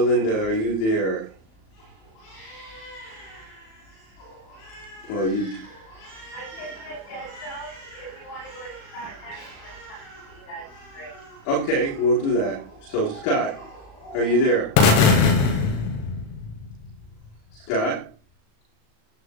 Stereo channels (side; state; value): right; late; 36 ms